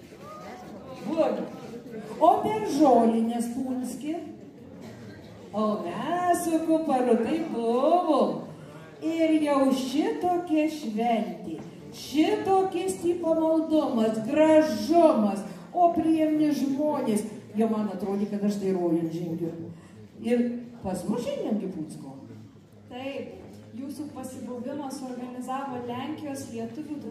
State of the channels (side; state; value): both; identical; correlation 1.00